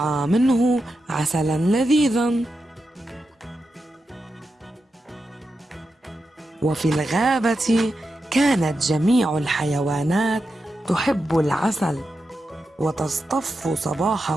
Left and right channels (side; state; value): both; normal; correlation 0.89